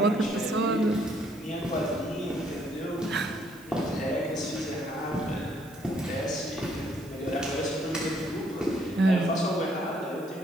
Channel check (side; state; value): right; noise; hiss, 23 dB below the sound